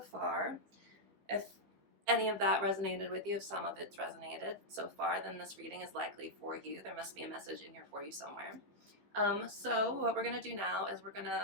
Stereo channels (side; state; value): left; late; 15 ms